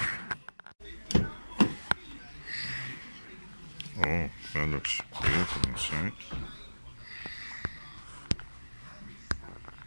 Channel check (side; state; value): both; inverted; correlation -1.00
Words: Oh, that looks beautiful inside.